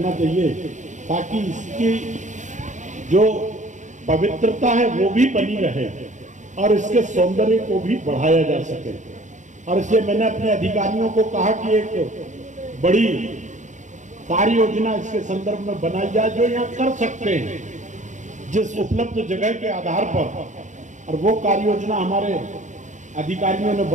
चाहिए ताकि इसकी जो पवित्रता है वो भी बनी रहे और इसके सौंदर्य को भी बढ़ाया जा सके। और इसलिए मैंने अपने अधिकारियों को कहा कि एक बड़ी कार्य योजना इसके संदर्भ में बनाई जाए जो यहाँ कर सकते हैं जिस उपलब्ध जगह के आधार पर। और वो कार्य योजना हमारे अधिकारियों ने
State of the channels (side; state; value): left; late; 0.35 ms